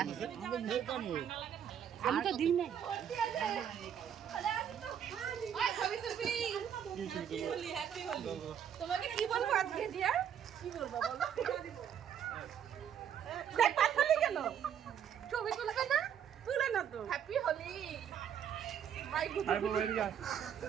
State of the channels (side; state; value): left; quieter; 8.9 dB